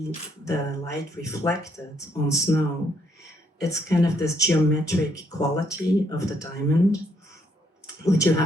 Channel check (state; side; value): normal; both; correlation 0.71